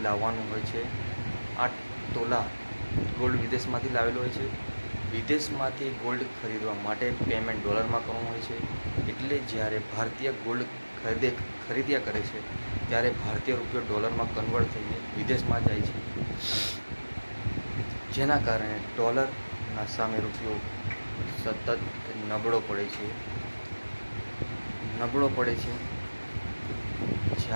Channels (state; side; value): inverted; both; correlation -1.00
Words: લાવવાનું હોય છે. 8 તોલા ગોલ્ડ વિદેશમાંથી લાવેલો હોય છે. વિદેશમાંથી ગોલ્ડ ખરીદવા માટે પેમેન્ટ ડોલરમાં કરવાનું હોય છે. એટલે જ્યારે ભારતીય ગોલ્ડ ખરીદ્યા કરે છે ત્યારે ભારતીય રૂપિયો ડોલરમાં કન્વર્ટ થઈને વિદેશમાં જાય છે, જેના કારણે ડોલરના સામે રૂપિયો સતત નબળો પડે છે.